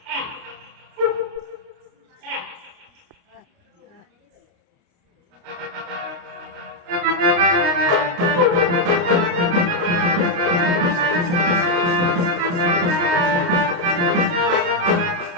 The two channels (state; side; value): late; left; 28 ms